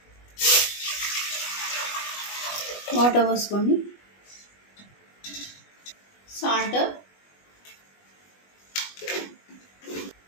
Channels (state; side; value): late; right; 20 ms